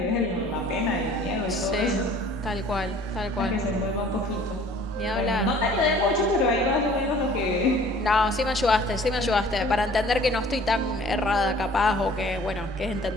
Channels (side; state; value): both; normal; correlation 0.52